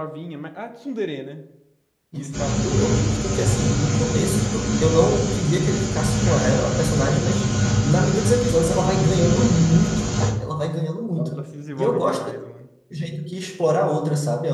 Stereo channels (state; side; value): identical; both; correlation 1.00